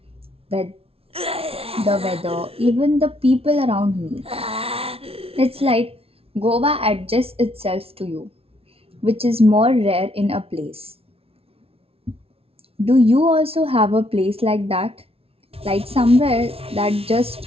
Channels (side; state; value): left; late; 0.28 ms